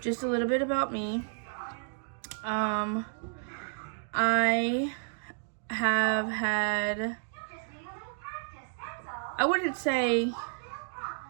just a little bit about me. I have had, I wouldn't say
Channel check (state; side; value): silent; left; digital silence